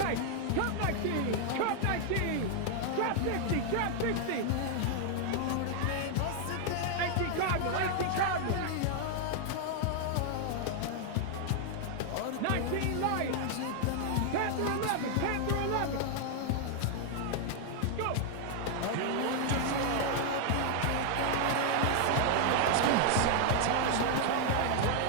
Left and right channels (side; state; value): both; different; correlation 0.00